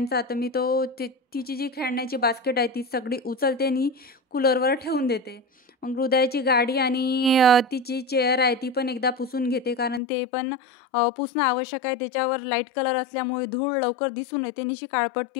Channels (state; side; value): drops out; right; at 10.0 s